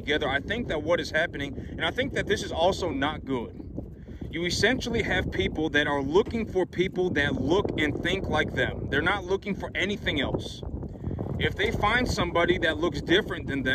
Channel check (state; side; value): identical; both; correlation 1.00